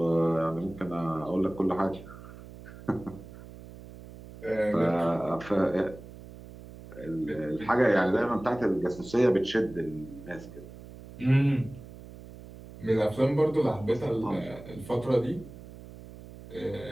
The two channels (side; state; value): right; noise; hum, 16 dB below the sound